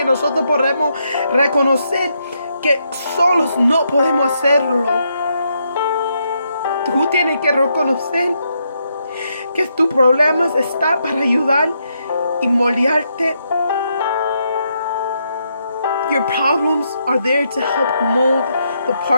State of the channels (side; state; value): both; inverted; correlation -0.79